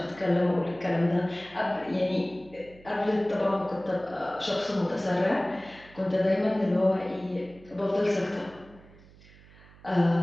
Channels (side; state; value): right; noise; hum, 24 dB below the sound